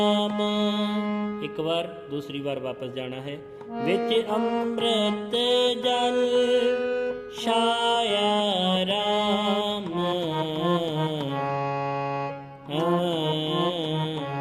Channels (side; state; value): both; identical; correlation 1.00